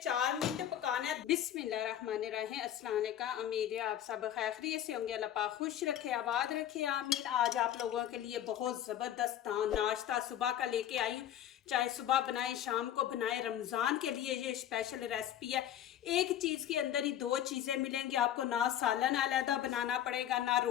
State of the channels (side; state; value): right; quieter; 11.0 dB